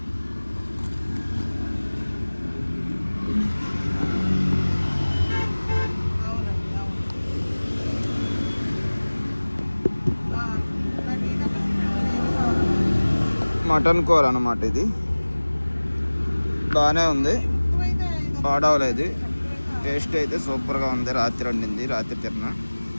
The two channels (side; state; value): both; inverted; correlation -1.00